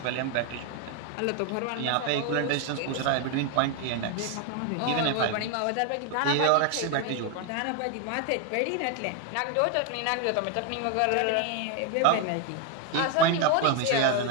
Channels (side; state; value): both; different; correlation 0.01